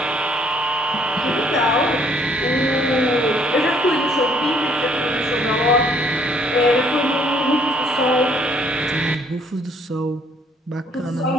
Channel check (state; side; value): normal; both; correlation 0.63